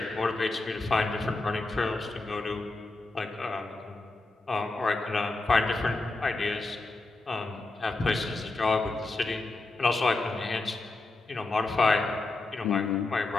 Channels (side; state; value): right; quieter; 3.2 dB